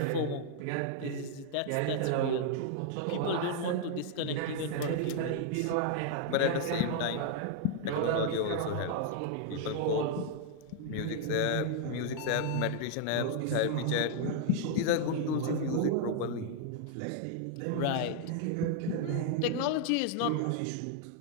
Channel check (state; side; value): different; both; correlation 0.00